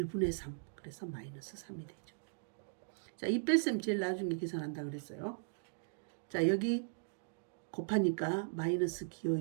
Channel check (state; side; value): silent; left; digital silence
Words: 3. 그래서 마이너스 3이 되죠. 자, 이 뺄셈 제일 나중에 계산한다 그랬어요. 자, 여기 곱하니까 마이너스 기호